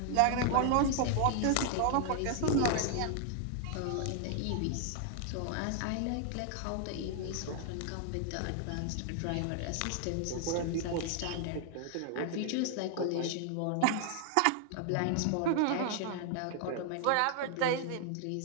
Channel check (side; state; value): both; different; correlation 0.00